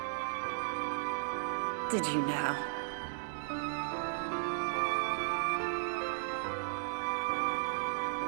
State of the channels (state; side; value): silent; left; digital silence